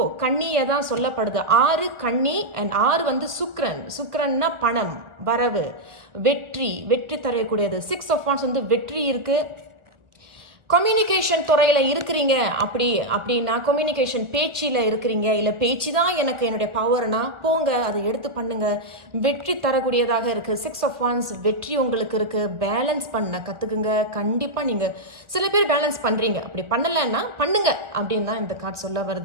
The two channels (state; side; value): late; left; 1.3 ms